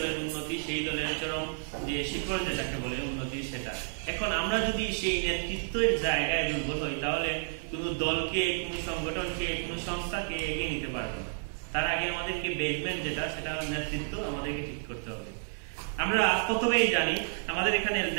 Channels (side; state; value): left; silent; digital silence